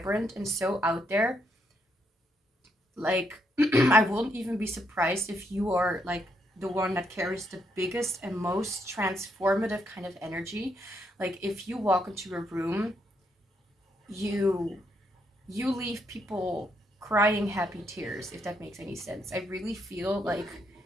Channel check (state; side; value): normal; both; correlation 0.76